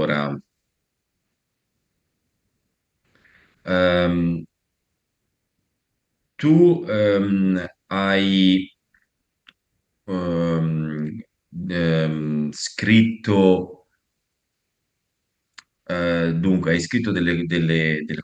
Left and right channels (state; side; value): identical; both; correlation 1.00